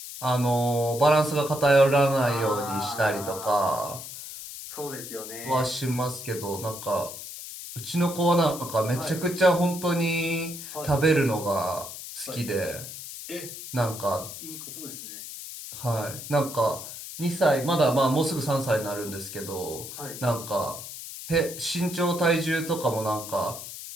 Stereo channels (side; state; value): left; noise; hiss, 11 dB below the sound